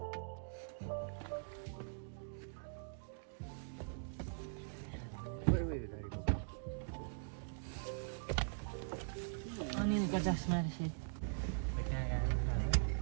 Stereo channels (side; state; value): left; silent; digital silence